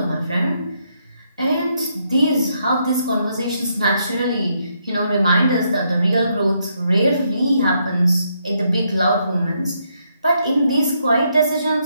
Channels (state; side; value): inverted; both; correlation -0.77